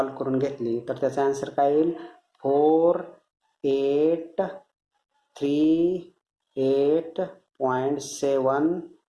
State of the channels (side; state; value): both; identical; correlation 1.00